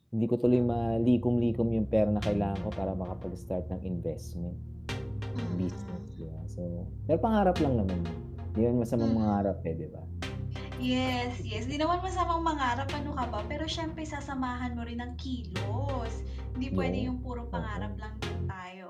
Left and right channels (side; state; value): both; identical; correlation 1.00